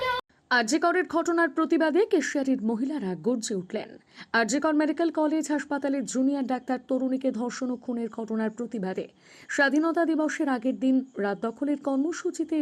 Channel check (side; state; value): both; identical; correlation 1.00